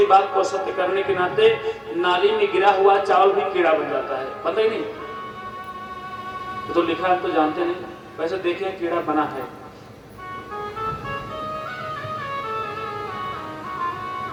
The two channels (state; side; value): identical; both; correlation 1.00